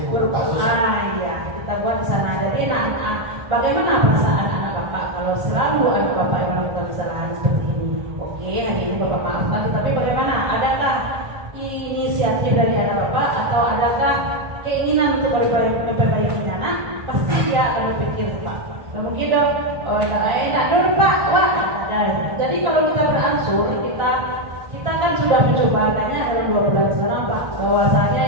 buku kasus. Iya, kita buat di sana. Jadi bagaimana perasaan anak Bapak kalau selalu anak Bapak yang melakukan kesalahan seperti ini? Oke, hari ini Bapak maafkan, tetapi bagaimana? Adakah inisiatif dari anak Bapak atau adakah keinginan untuk memperbaiki anak? Pasti dia akan berpikir Pak. Dan mungkin dong, enak dong Pak, wah. Jadi kalau kita beransur, kita kan sudah mencoba kayaknya dalam 2 bulan sekarang Pak, bahwasanya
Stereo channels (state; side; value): late; left; 1.4 ms